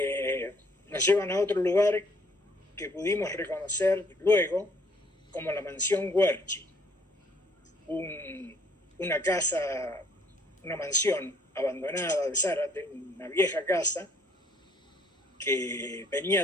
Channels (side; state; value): both; normal; correlation 0.63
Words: nos llevan a otro lugar que pudimos reconocer luego como la mansión Huerchi, una casa, una mansión abandonada de Zárate, una vieja casa que